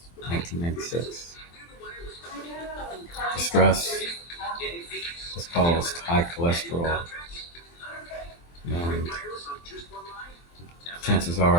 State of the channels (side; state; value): right; late; 23 ms